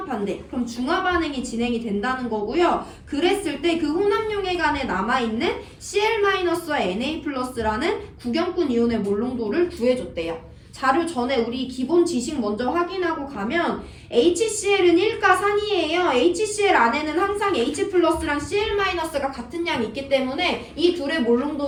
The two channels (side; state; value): both; identical; correlation 1.00